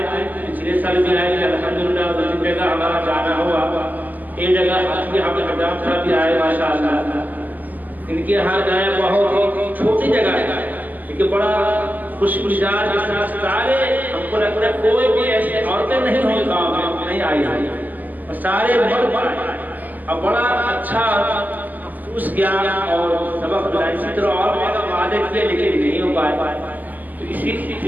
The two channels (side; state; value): left; late; 0.083 ms